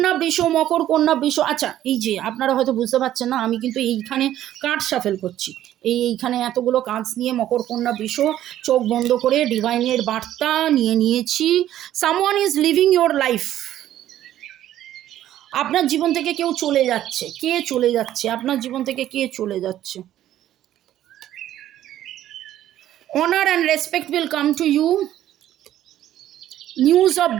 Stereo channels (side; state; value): left; quieter; 12.5 dB